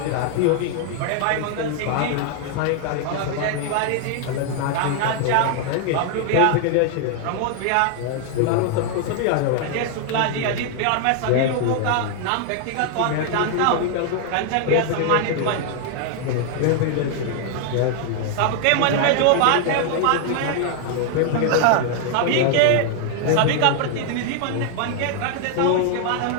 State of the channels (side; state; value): both; different; correlation 0.00